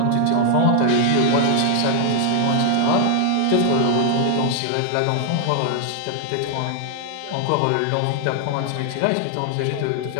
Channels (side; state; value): both; different; correlation 0.00